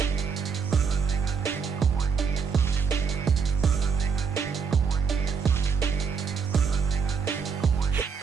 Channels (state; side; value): quieter; left; 5.8 dB